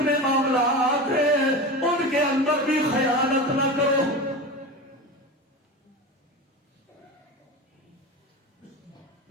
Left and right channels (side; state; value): both; normal; correlation 0.27